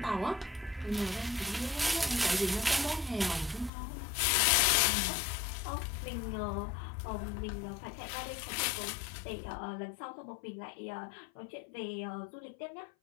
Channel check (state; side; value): drops out; right; at 3.7 s